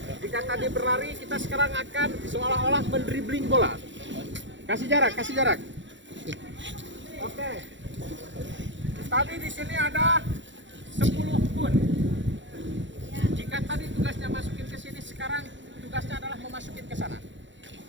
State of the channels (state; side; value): late; left; 0.54 ms